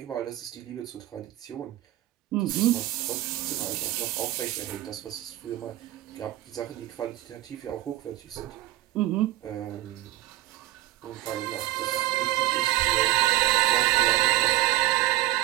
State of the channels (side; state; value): left; quieter; 15.8 dB